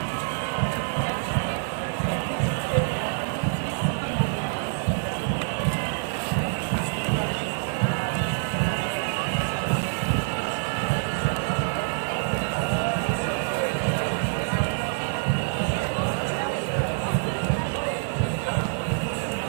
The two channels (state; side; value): silent; left; digital silence